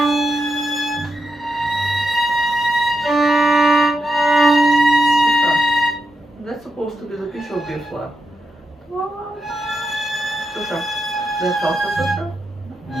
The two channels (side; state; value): both; normal; correlation 0.86